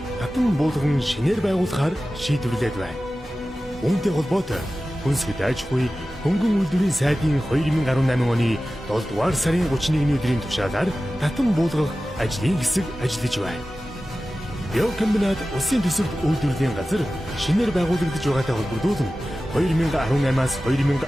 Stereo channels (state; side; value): normal; both; correlation 0.95